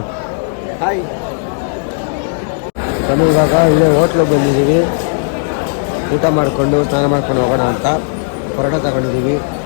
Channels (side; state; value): right; silent; digital silence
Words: ನಾನು ಇವಾಗ ಇಲ್ಲೇ ಹೋಟ್ಲಿಗೆ ಬಂದಿದ್ದೀವಿ. ಊಟ ಮಾಡಿಕೊಂಡು ಸ್ನಾನ ಮಾಡ್ಕೊಂಡು ಹೋಗೋಣ ಅಂತ ಪರೋಟ ತಗೊಂಡಿದ್ದೀವಿ.